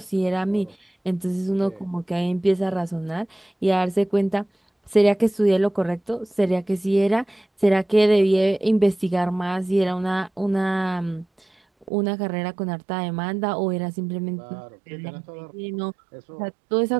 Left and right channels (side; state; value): left; drops out; at 11.9 s